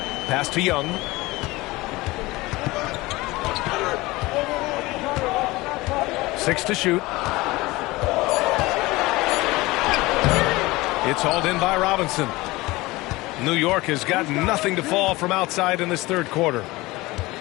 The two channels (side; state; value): right; quieter; 20.8 dB